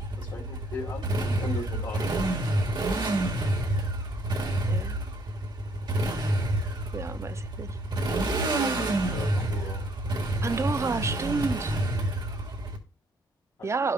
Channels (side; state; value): both; normal; correlation 0.65